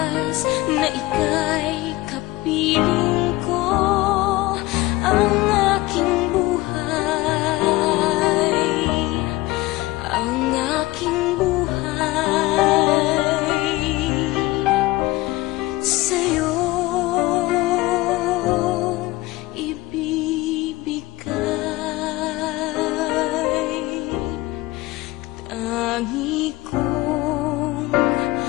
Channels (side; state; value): right; quieter; 19.6 dB